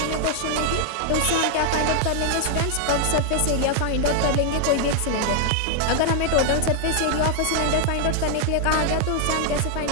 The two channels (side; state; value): both; different; correlation 0.00